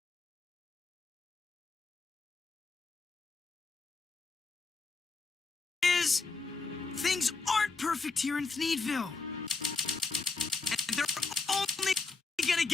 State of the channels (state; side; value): quieter; right; 4.1 dB